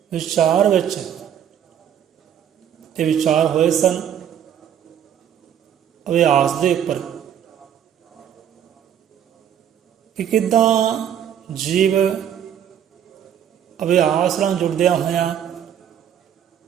ਵਿਚਾਰ ਵਿੱਚ ਇਹ ਵਿਚਾਰ ਹੋਏ ਸਨ ਅਭਿਆਸ ਦੇ ਉੱਪਰ ਕਿ ਕਿੱਦਾਂ ਜੀਵ ਅਭਿਆਸ ਨਾਲ ਜੁੜਦਿਆਂ ਹੋਇਆਂ,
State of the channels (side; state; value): left; quieter; 9.5 dB